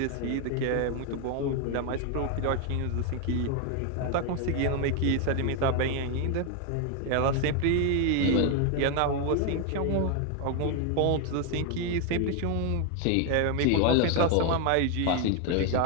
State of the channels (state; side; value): different; both; correlation 0.01